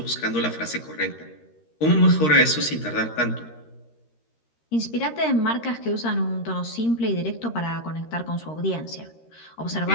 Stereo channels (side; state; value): right; late; 13 ms